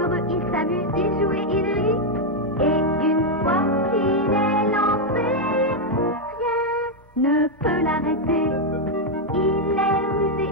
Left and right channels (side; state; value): both; normal; correlation 0.01